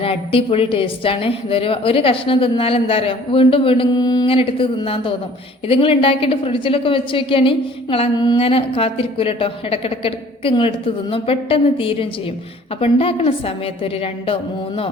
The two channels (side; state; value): both; normal; correlation 0.52